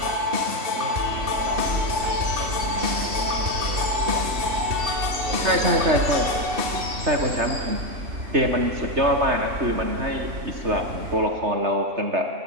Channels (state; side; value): late; left; 3.3 ms